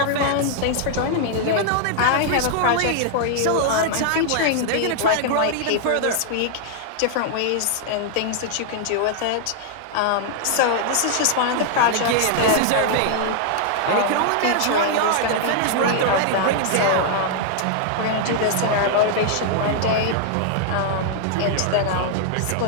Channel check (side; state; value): both; different; correlation -0.01